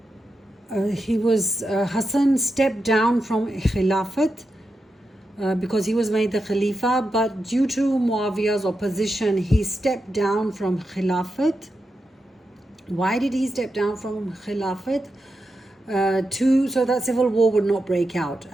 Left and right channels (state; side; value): normal; both; correlation 0.88